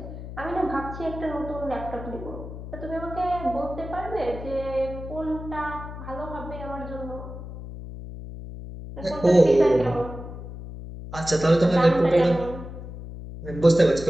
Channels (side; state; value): left; noise; hum, 11 dB below the sound